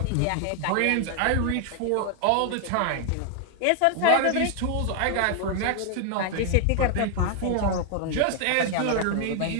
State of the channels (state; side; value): different; both; correlation 0.00